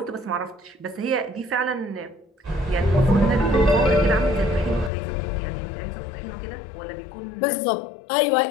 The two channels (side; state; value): right; drops out; at 4.9 s